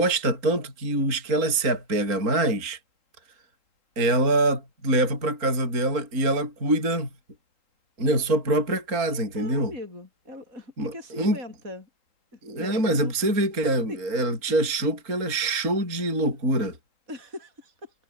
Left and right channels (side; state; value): left; late; 3.8 ms